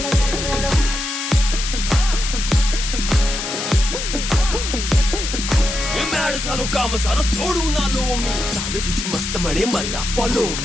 झालो काम सारं सोडून आलो मी चाल तुझी मस्त म्हणे मला फॉलो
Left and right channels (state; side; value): noise; left; hiss, 4 dB below the sound